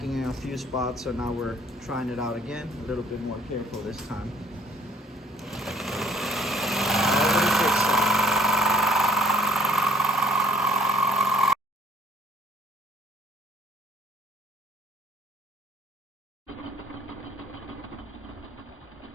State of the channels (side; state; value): both; normal; correlation 0.61